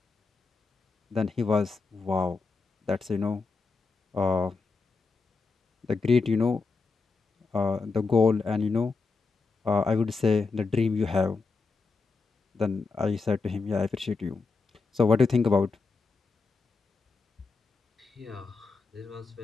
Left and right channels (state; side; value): quieter; right; 4.3 dB